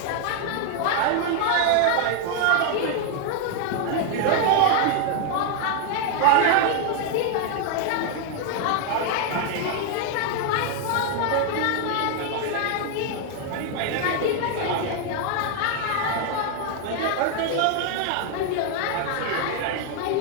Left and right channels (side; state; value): both; different; correlation 0.01